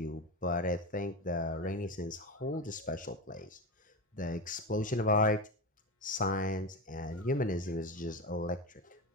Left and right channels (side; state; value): both; normal; correlation 0.20